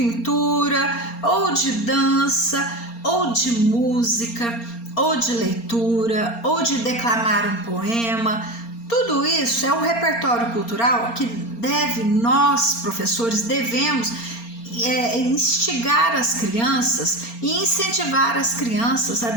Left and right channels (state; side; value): late; right; 4.3 ms